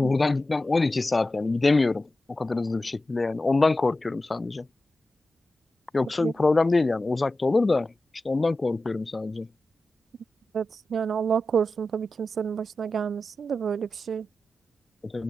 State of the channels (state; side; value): normal; both; correlation 0.93